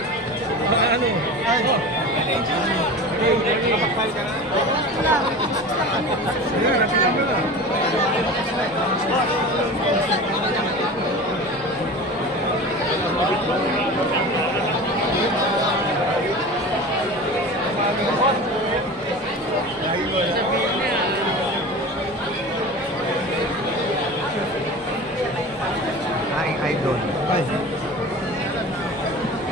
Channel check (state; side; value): normal; both; correlation 0.34